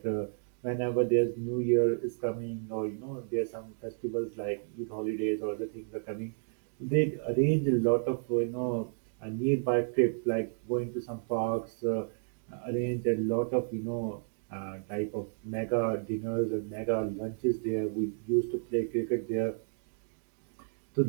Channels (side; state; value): left; silent; digital silence